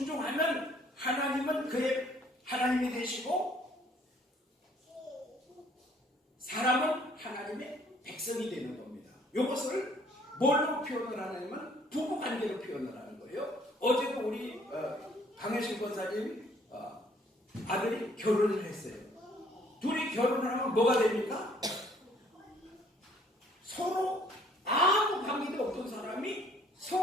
하나님은 그의 하나님이 되시고 사람은 하나님의 백성이 되는 겁니다. 이것을 뭘로 표현을 하냐면 부부관계로 표현을 하는 거예요. 어제도 우리 강혜신 권사님 아들이 결혼을 했어요. 둘이 결혼을 하면 뭐가 됩니까? 서로 아무 관계도 없던 사람이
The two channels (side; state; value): both; normal; correlation 0.61